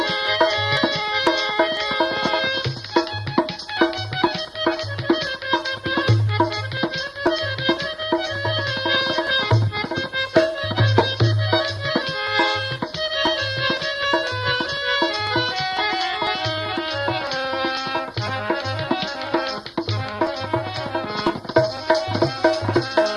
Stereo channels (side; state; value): both; identical; correlation 1.00